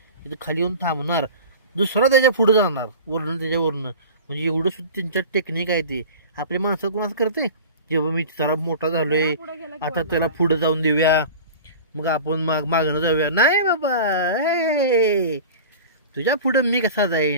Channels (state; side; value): inverted; both; correlation -0.36